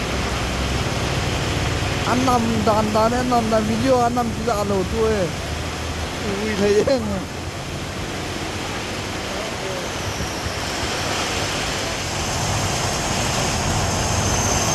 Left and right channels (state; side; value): identical; both; correlation 1.00